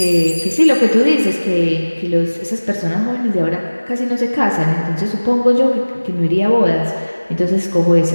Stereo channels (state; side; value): inverted; both; correlation -1.00